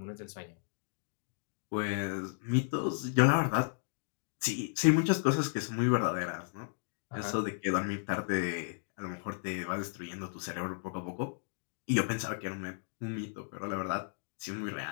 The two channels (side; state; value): right; silent; digital silence